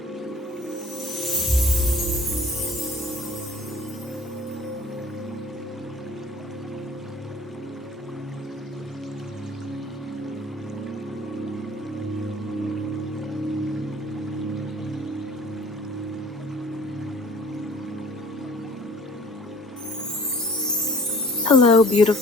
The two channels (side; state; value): both; normal; correlation 0.51